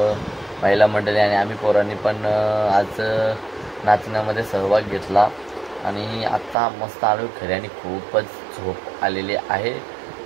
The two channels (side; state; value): left; drops out; at 6.6 s